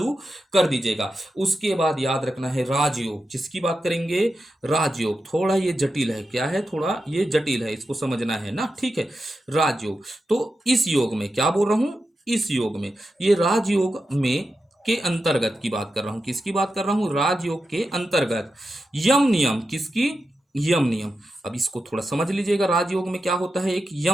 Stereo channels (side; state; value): both; normal; correlation 0.89